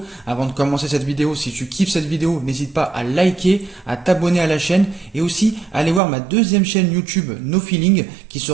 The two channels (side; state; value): left; drops out; at 6.0 s